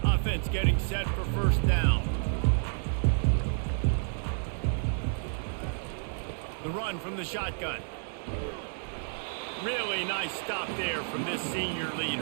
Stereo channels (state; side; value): silent; left; digital silence